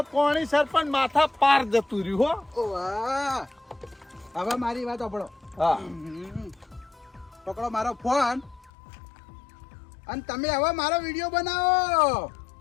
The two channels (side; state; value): right; drops out; at 8.7 s